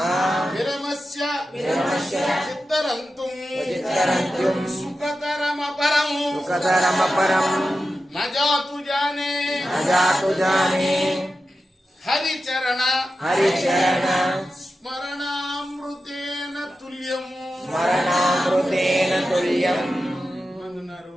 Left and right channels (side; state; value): both; normal; correlation 0.92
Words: విరమస్య చిత్తరంతుం సుఖతరమపరం నజాతు జానే హరిచరణ స్మరణామృతేన తుల్యం.